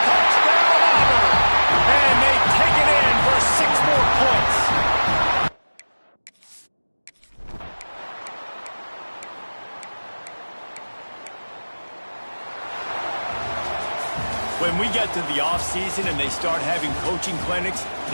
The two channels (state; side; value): inverted; both; correlation -1.00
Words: Touchdown, Auburn! And they take it in for 6 more points. When we get to the offseason and they start having coaching clinics,